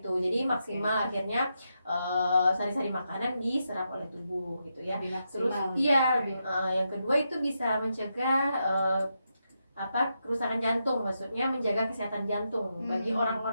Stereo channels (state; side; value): inverted; both; correlation -0.84